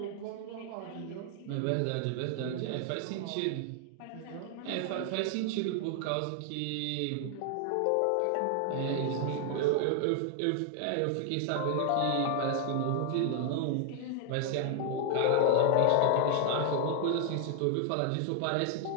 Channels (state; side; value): different; both; correlation 0.00